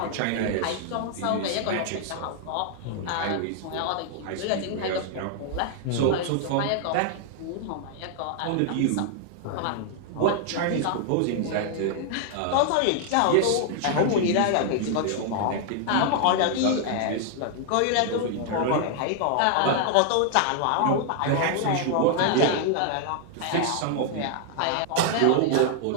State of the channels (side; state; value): both; different; correlation 0.00